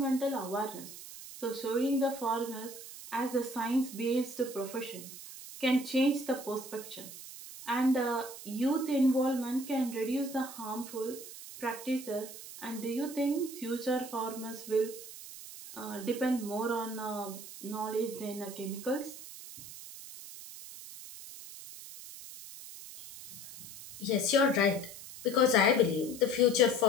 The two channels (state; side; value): noise; right; hiss, 13 dB below the sound